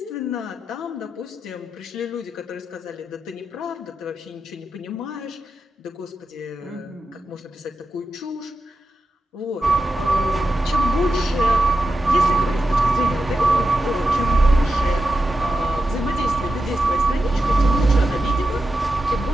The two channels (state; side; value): normal; both; correlation 0.90